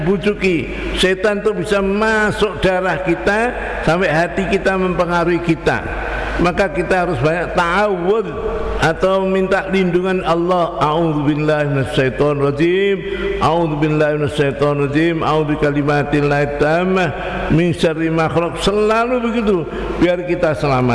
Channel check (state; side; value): identical; both; correlation 1.00